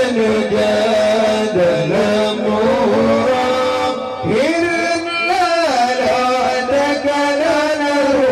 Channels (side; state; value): both; identical; correlation 1.00